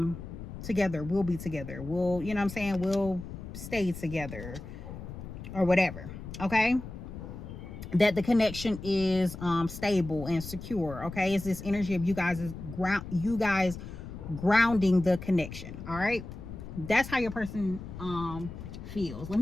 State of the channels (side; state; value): left; noise; rumble, 11 dB below the sound